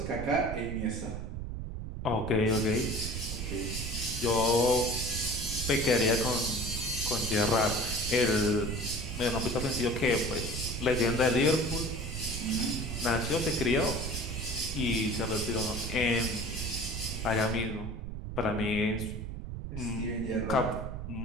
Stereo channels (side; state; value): right; noise; rumble, 6 dB below the sound